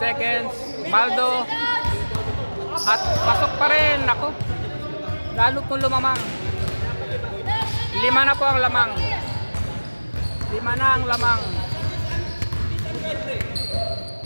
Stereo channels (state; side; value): inverted; both; correlation -1.00